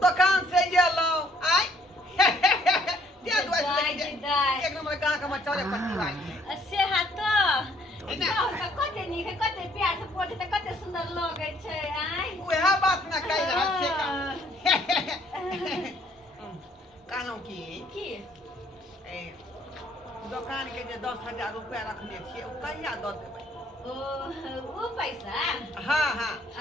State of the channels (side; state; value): both; normal; correlation 0.63